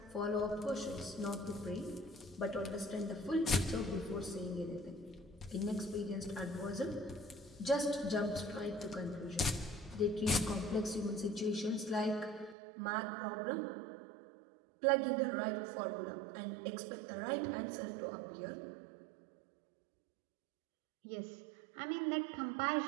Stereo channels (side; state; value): left; drops out; at 12.6 s